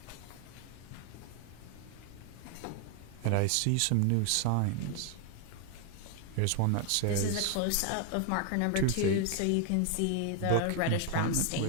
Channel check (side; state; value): both; different; correlation 0.01